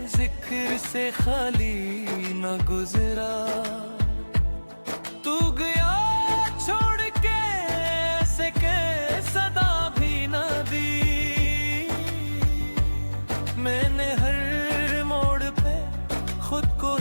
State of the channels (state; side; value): inverted; both; correlation -1.00